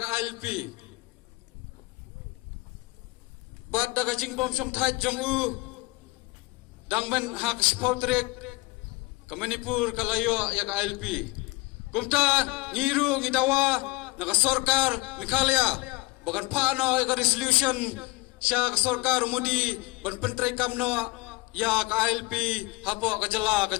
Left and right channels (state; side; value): quieter; right; 23.6 dB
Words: ILP Bad daga jingbom syong thai jong u dangmen hak spotrek ke Manipur kalayo ya ka ILP kumta ngiru ngidawa naga sarkar Meghalaya bagan pano ya ka resolution sya ka sarkar mudi ban pentrai kamno ya ka ILP hapo ka jela ka